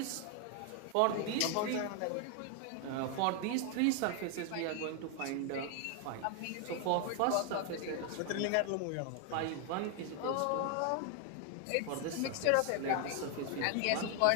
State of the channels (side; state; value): both; different; correlation 0.00